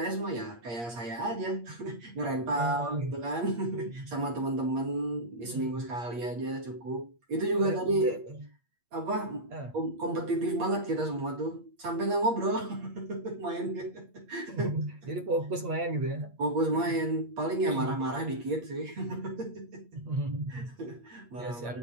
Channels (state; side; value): late; left; 8.5 ms